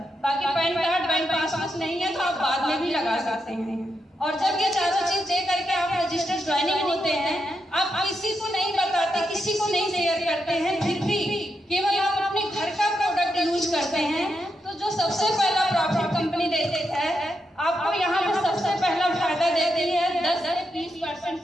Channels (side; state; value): both; normal; correlation 0.84